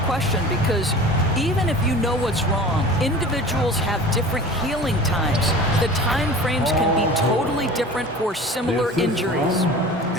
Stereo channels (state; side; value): normal; both; correlation 0.39